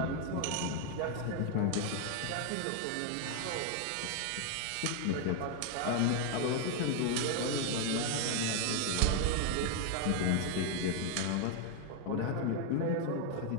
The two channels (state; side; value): different; both; correlation 0.01